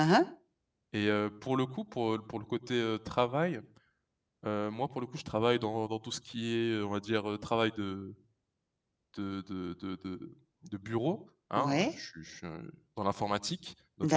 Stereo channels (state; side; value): identical; both; correlation 1.00